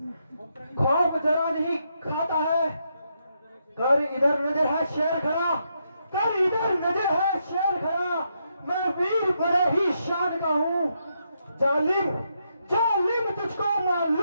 खौफ जरा नहीं खाता है। कर इधर नजर है शेर खड़ा, कर इधर नजर है शेर खड़ा। मैं वीर बड़े ही शान का हूँ। जालिम जालिम तुझको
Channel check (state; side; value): inverted; both; correlation -0.80